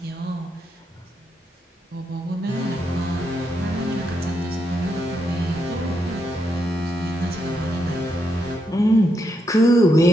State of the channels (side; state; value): both; normal; correlation 0.81